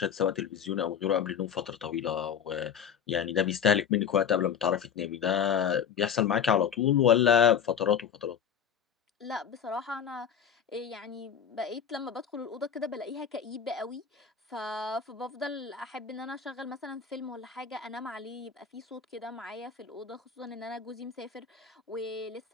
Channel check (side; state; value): right; quieter; 7.9 dB